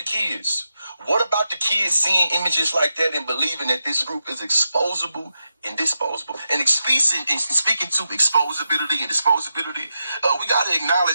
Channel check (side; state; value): both; inverted; correlation -0.88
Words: kids? What about the kids seeing images like that and believing that this group is exposable and disposable? And speaking to exposability and disposability, we got to